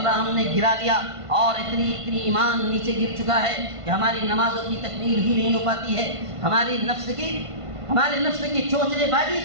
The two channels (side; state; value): left; late; 1.5 ms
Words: ہم نے گرا لیا اور اتنی ایمان نیچے گر چکا ہے کہ ہماری نمازوں کی تکمیل ہی نہیں ہو پاتی ہے. ہمارے نفس کی چوچلے بازی